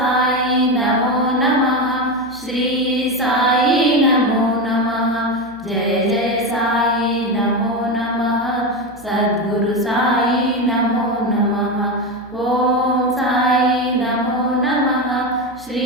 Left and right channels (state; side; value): noise; right; hum, 24 dB below the sound